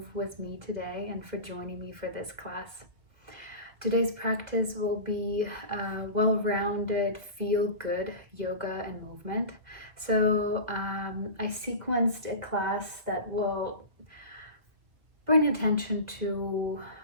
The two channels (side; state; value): left; late; 1.8 ms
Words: with me today and for joining me for this class. Today's practice will be well-rounded, feel-good yoga and movement. So I sequenced a class that will bring attention to